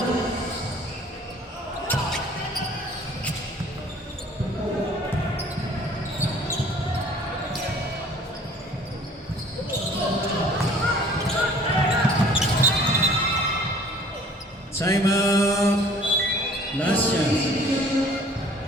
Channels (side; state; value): both; normal; correlation 0.52